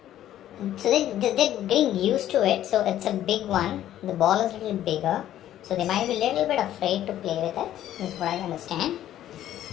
So they're getting used to it. So it's a big one. The ball is a little bigger. So they might be a little bit afraid to play with it. This is what I understand.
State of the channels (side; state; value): right; quieter; 12.2 dB